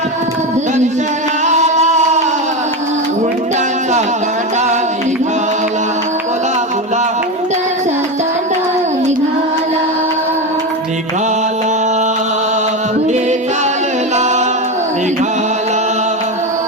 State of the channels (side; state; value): both; normal; correlation 0.17